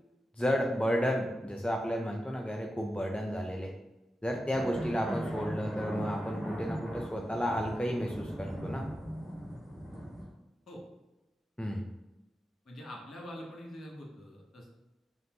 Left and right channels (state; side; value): normal; both; correlation 0.90